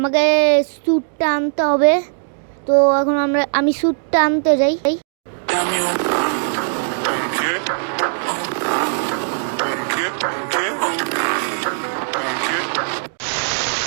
স্যুটটা আনতে হবে। তো এখন আমি স্যুটটা আনতে যাই।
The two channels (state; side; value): silent; left; digital silence